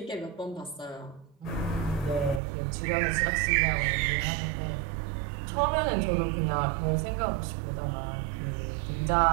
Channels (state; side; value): drops out; left; at 2.4 s